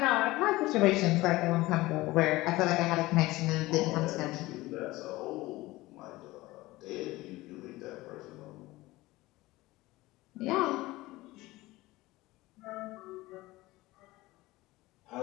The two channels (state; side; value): quieter; right; 19.2 dB